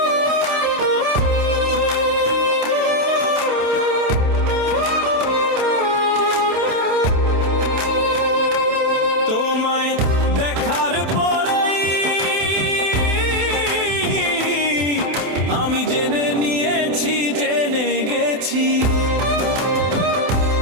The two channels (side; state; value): left; late; 28 ms